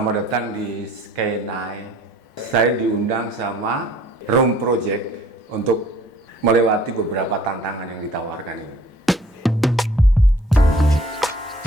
datang di Sky9. Saya diundang sama Room Project untuk melewati beberapa tantangan yang ditawarkan ini.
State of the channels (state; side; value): normal; both; correlation 0.56